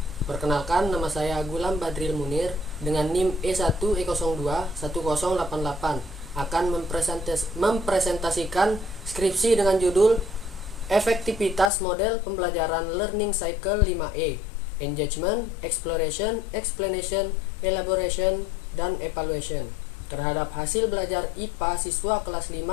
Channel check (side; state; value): right; drops out; at 11.7 s